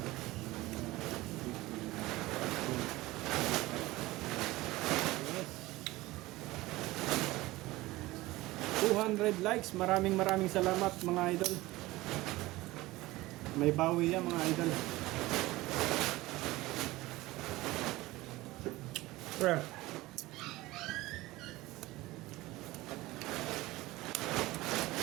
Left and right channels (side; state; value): left; quieter; 19.1 dB